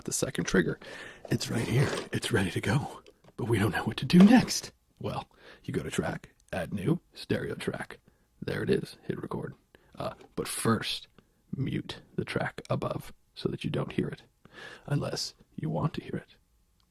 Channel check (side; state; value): both; identical; correlation 1.00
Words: the second trigger. It's right here. It's ready to go. But we don't know what to do next. Well, you go to track, add new, stereo track. There it is. Hit record. But first, mute the track above so that you don't hear it. Unless you want to hear it.